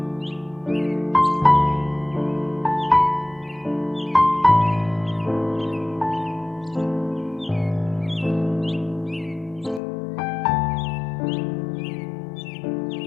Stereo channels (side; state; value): right; drops out; at 9.8 s